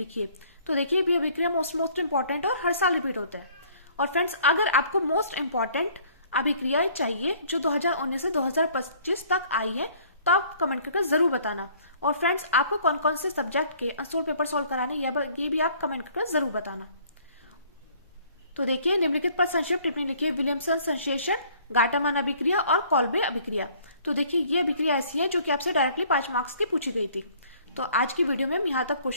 तो देखिए ये अभिक्रिया मोस्ट इंपॉर्टेंट और हर साल रिपीट होता है। और फ्रेंड्स, अगर आपको मोस्ट इंपॉर्टेंट अभिक्रियाएं चाहिए जो 2019 से 2025 तक आई है तो आप कमेंट करके जरूर बताना। और फ्रेंड्स, आपको कौन कौन से सब्जेक्ट के अनसोल्ड पेपर सॉल्व कराने ये भी आप कमेंट करके जरूर बताना। तो देखिए निम्नलिखित पर संक्षिप्त टिप्पणी लिखिए। विलियमसन संश्लेषण, गाटामन अभिक्रिया और कॉल्बे अभिक्रिया। तो देखिए ये अभिक्रिया ऐसी है जो कि आपसे डायरेक्टली 5 मार्क्स की पूछी गई थी। तो आज की वीडियो में हम यहाँ तक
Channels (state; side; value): inverted; both; correlation -0.57